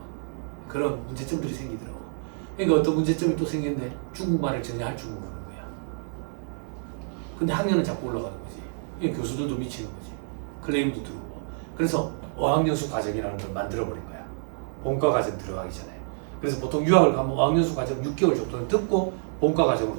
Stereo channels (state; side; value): silent; left; 60 dB below the other